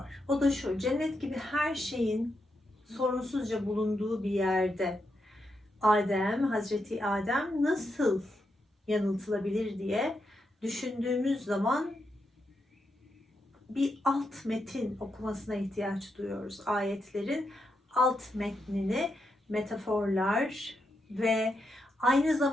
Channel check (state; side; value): normal; both; correlation 0.83